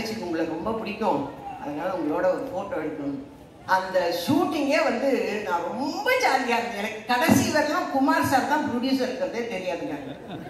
உங்களை ரொம்ப பிடிக்கும், அதனால உங்களோட ஒரு ஃபோட்டோ எடுக்கணும். அந்த ஷூட்டிங்கே வந்து நான் ரொம்ப ஜாலியாக இருந்தேன். எனக்கு கடைசி வரலாம் குமார் சார் தான் ப்ரொடியூசர் இருக்கிறதே தெரியாதுங்க.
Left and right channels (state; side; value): identical; both; correlation 1.00